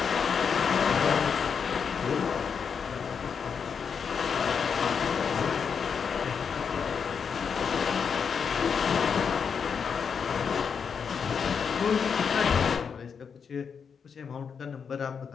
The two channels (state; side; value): quieter; right; 6.4 dB